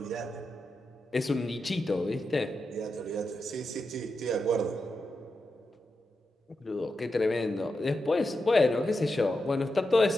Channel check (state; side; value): normal; both; correlation 0.88